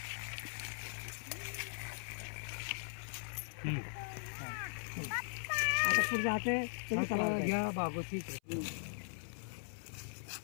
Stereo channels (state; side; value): silent; right; 51 dB below the other